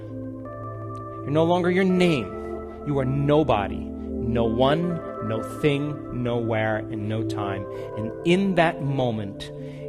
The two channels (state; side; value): identical; both; correlation 1.00